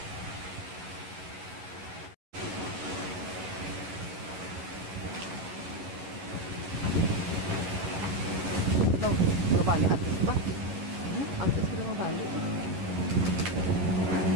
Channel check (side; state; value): left; late; 11 ms